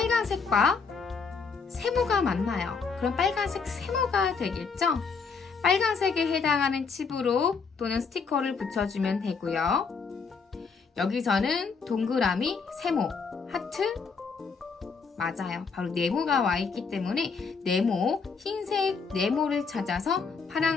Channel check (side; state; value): right; quieter; 5.1 dB